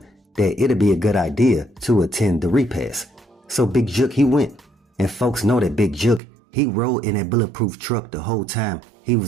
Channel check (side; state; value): left; drops out; at 6.2 s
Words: that it'd be a good idea to attend the repast. So Big Jook, he went, and folks know that Big Jook, he rode in that bulletproof truck the whole time he